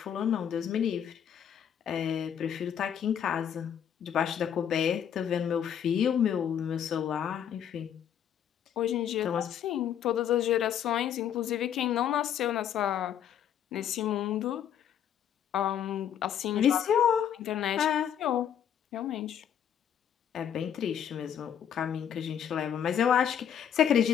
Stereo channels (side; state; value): right; quieter; 9.1 dB